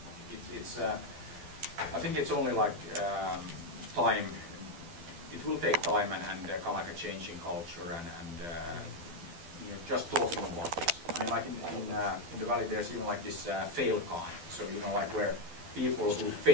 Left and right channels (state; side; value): late; left; 12 ms